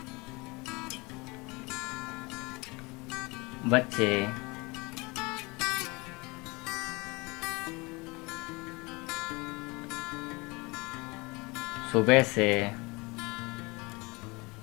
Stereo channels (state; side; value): quieter; right; 25.7 dB